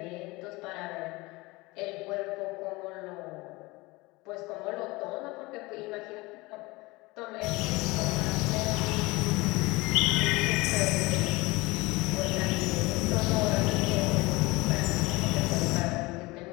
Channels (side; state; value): right; quieter; 22.6 dB